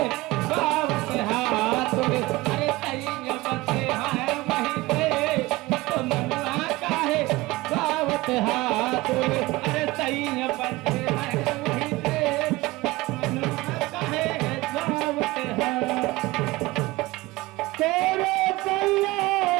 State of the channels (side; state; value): left; quieter; 20.2 dB